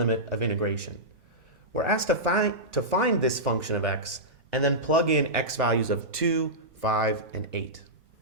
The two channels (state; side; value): normal; both; correlation -0.14